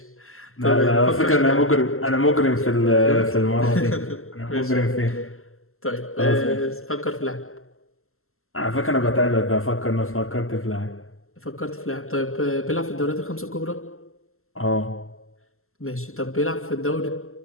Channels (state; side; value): late; right; 0.62 ms